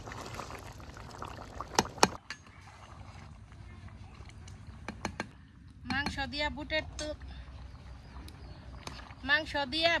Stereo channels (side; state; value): both; identical; correlation 1.00